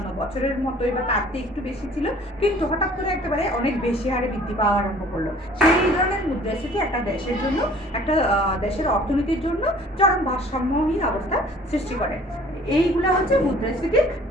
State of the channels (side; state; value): both; normal; correlation 0.52